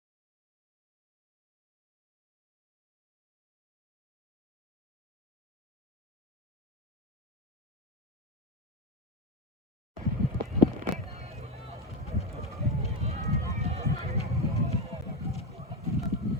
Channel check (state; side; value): normal; both; correlation 0.16